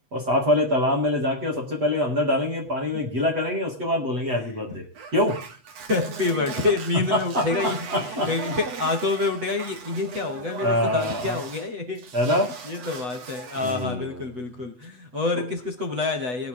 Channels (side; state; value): left; late; 8.1 ms